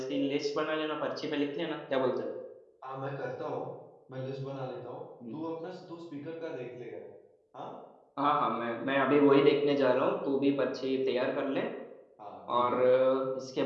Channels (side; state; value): both; identical; correlation 1.00